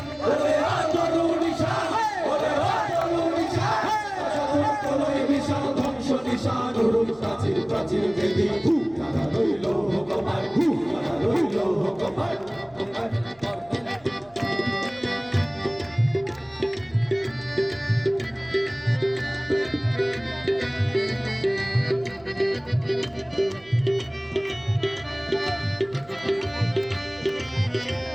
ওরে আতরু নিশান ওরে আতরু নিশান তোলই বিশাল ধ্বংস নিশান উরুম প্রাচীর প্রাচীর বেদি তারা রইল হুকমান তারা রইল হুকমান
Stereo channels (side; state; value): right; noise; hum, 28 dB below the sound